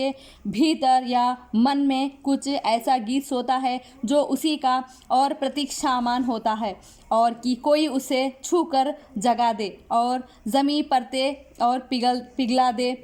भीतर या मन में कुछ ऐसा गीत सोता है जो उसी का और प्रतीक्षामान होता है, और कि कोई उसे छू कर जगा दे और ज़मीं परते और पिघला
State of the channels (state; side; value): identical; both; correlation 1.00